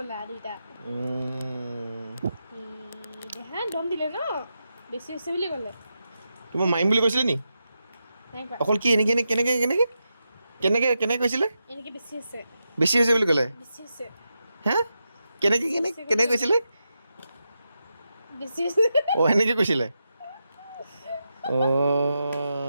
দুইটা দেহা দম দিলে ন বেছি হৈছে বুলি ক'লে তোমাক মাৰিম বুলি কৈছিলে নি অকল কি কেনেকে কৈছিলে এনেকে বেছি হৈছে বুলি ক'লে বেছি হৈছে হা কেনেকে কৈছিলে বেছি হৈছে এনেকে কৈছিলে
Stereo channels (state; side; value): inverted; both; correlation -0.87